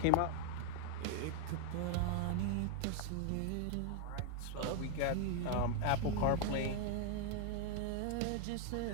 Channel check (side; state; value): both; different; correlation 0.01